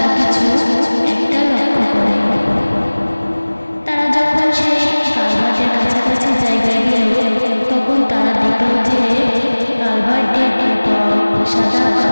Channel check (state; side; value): inverted; both; correlation -1.00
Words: কিছু একটা লক্ষ্য করে। তারা যখন সেই কালভার্টের কাছাকাছি জায়গায় গেল, তখন তারা দেখল যে কালভার্টের উপর সাদা